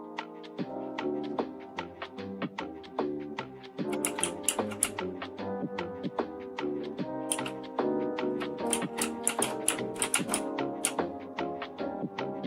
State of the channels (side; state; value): both; identical; correlation 1.00